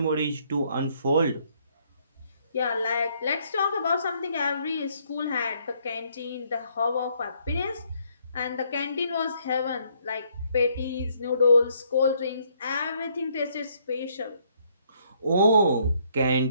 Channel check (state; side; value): inverted; both; correlation -0.69